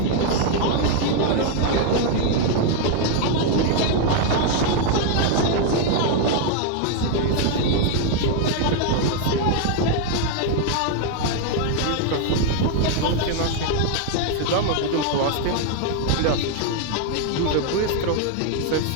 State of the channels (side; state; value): both; different; correlation 0.00